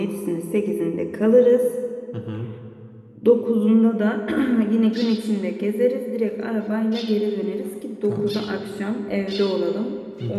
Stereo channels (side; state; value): both; identical; correlation 1.00